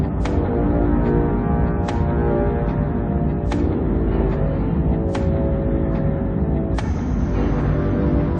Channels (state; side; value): identical; both; correlation 1.00